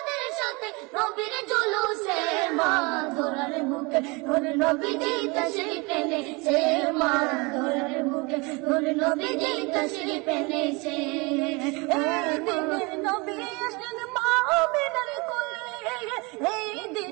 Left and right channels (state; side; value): quieter; left; 27.6 dB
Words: সাথে নবীর জুলুসে, মা ধরার বুকে ধরে নবীজি তাশরীফ এনেছে, মা ধরার বুকে ধরে নবীজি তাশরীফ এনেছে, এই দিনে নবী আসলেন মা আমিনার কোলে, এই